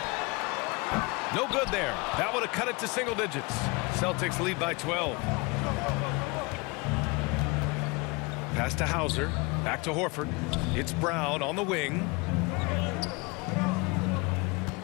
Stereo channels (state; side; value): quieter; right; 27.1 dB